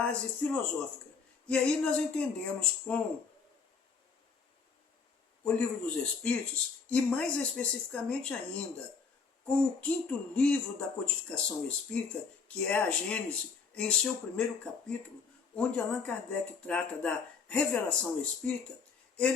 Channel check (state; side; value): quieter; right; 5.3 dB